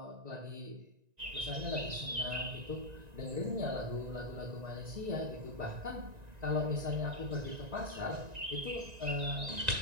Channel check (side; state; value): left; late; 1.9 ms